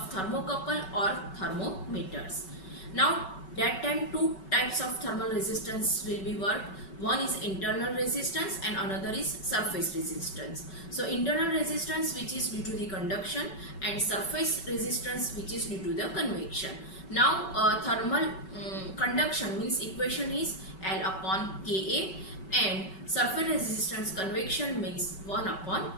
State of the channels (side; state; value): right; late; 5.3 ms